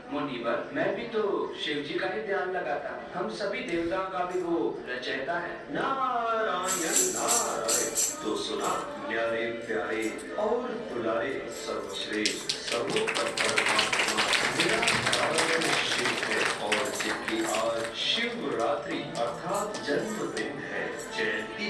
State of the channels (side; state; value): both; identical; correlation 1.00